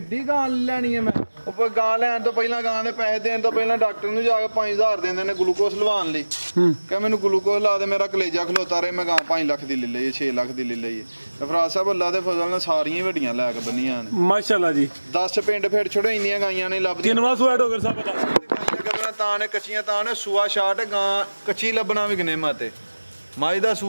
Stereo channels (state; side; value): inverted; both; correlation -1.00